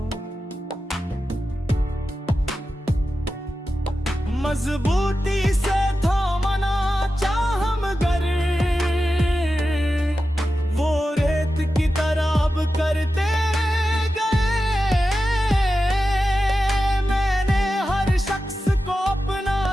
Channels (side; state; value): both; normal; correlation 0.92